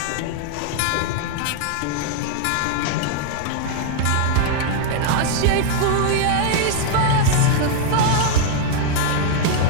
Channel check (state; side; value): different; both; correlation 0.00